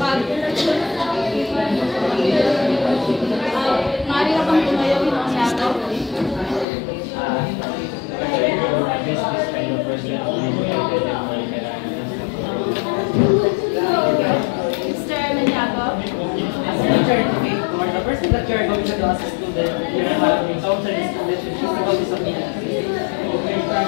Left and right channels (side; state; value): right; drops out; at 6.7 s